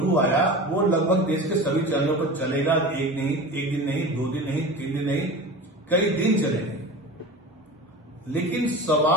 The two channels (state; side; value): normal; both; correlation 0.32